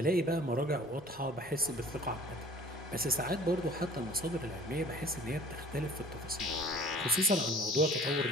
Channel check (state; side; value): normal; both; correlation 0.50